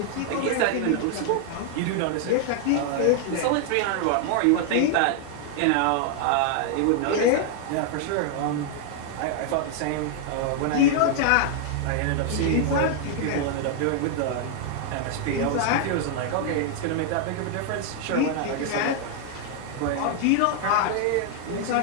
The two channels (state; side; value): different; both; correlation 0.00